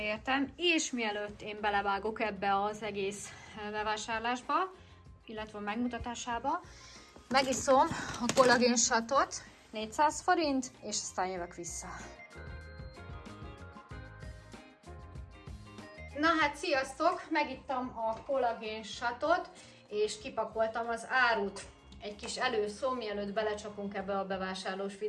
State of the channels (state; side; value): identical; both; correlation 1.00